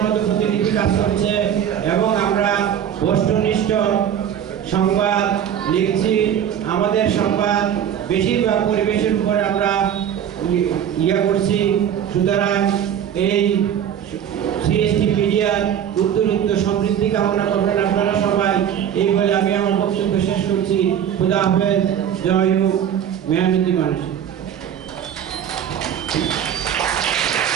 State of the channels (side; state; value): left; quieter; 9.4 dB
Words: মতো প্রতিনিধি কাজ করছে এবং আমরা বস্তুনিষ্ঠ সংবাদ লিখছি। আমাদের সংবাদ বেশিরভাগ পরিবেশের উপরে আমরা করছি। সুতরাং এই সিএসসি মিডিয়ার উত্তরোত্তর সমৃদ্ধি কামনা করবেন আপনারা সবাই। এই বলে আমি আমার বক্তব্য শেষ করছি। খুদা হাফেজ, জয় হোক, মেহনতি মানুষ।